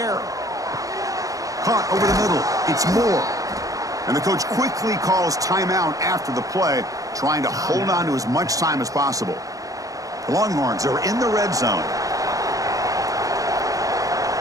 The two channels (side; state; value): left; late; 0.17 ms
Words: Caught over the middle. It's Moore. And the coach quickly calls timeout after the play, trying to hold on to as much time as possible. The Longhorns are in the red zone.